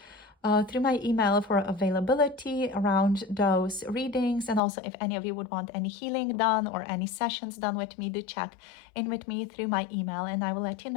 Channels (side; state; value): right; drops out; at 4.6 s